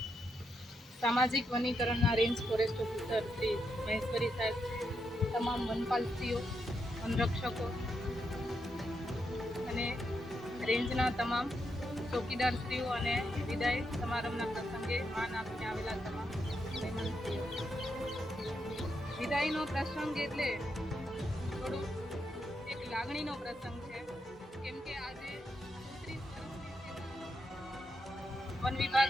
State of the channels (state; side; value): normal; both; correlation 0.82